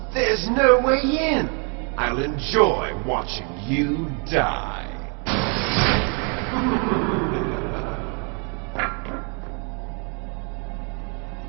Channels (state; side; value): quieter; left; 36.8 dB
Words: There's no way in. I'll enjoy watching you die.